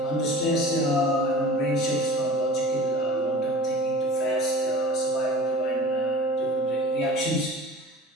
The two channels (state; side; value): normal; both; correlation 0.40